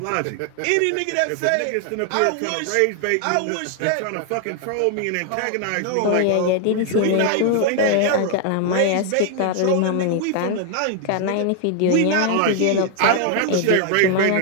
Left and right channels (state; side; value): different; both; correlation 0.00